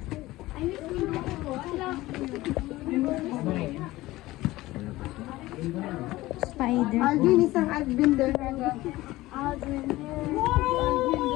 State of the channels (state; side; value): quieter; right; 18.0 dB